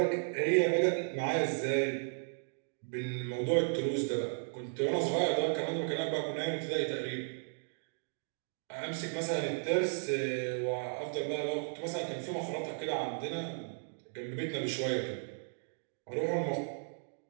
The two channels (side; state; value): left; silent; digital silence